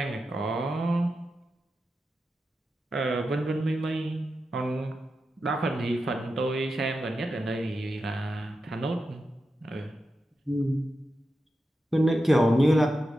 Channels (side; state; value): both; normal; correlation 0.90